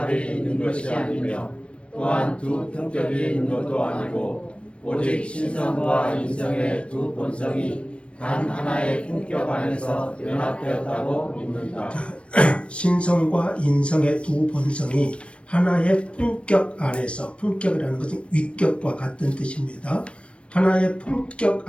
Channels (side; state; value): right; late; 0.060 ms